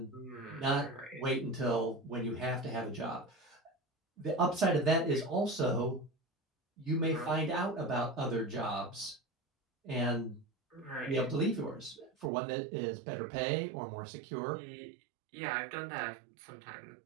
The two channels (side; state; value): left; drops out; at 12.3 s